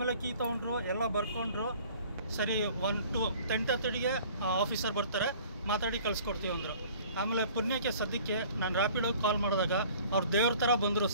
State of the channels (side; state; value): both; inverted; correlation -0.50